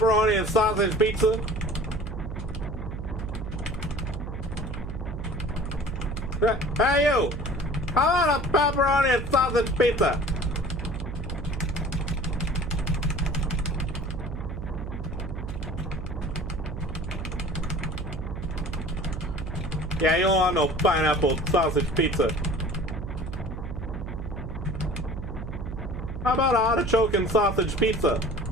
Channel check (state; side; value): noise; right; hum, 7 dB below the sound